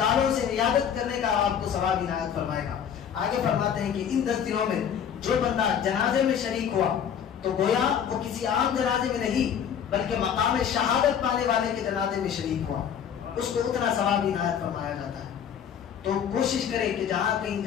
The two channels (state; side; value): quieter; right; 8.4 dB